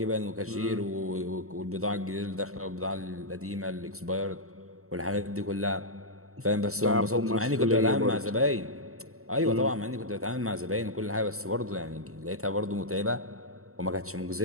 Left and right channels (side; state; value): left; late; 0.64 ms